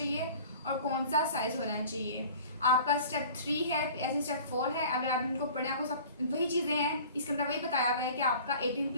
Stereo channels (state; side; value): inverted; both; correlation -0.44